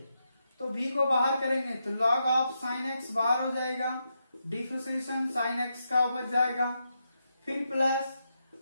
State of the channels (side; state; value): both; inverted; correlation -0.84